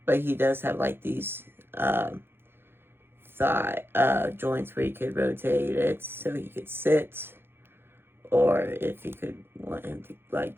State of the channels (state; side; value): late; left; 0.11 ms